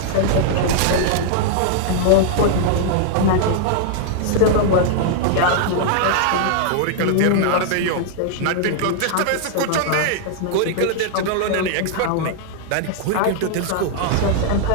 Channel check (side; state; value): both; different; correlation -0.01